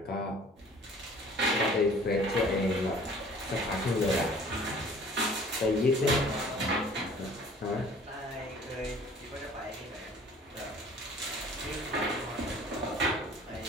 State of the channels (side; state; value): both; normal; correlation 0.50